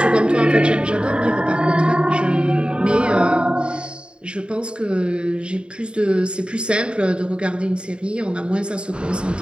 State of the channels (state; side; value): late; left; 0.053 ms